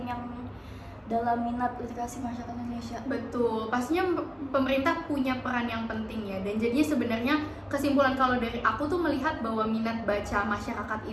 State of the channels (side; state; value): both; identical; correlation 1.00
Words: yang dalam minat literasi masyarakat Indonesia. Betul, pastinya pemerintah punya peran yang penting ya. Dan jadinya sebenarnya kesimpulan kalau dari aku tuh melihat bahwa minat baca masyarakat